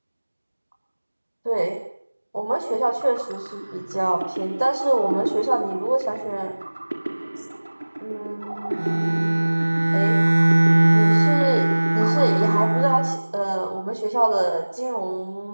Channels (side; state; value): both; inverted; correlation -1.00